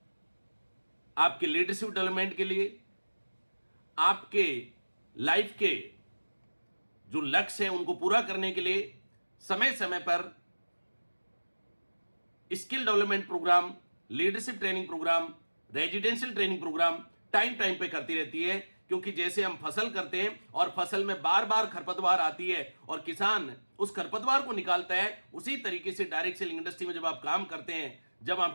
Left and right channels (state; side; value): inverted; both; correlation -1.00